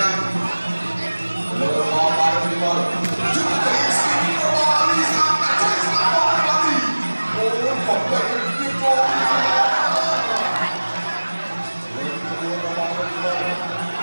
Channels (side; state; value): both; inverted; correlation -1.00